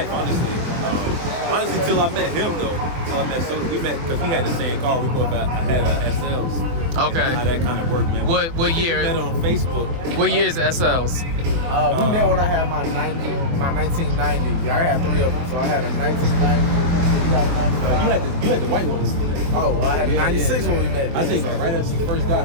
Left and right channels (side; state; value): left; late; 23 ms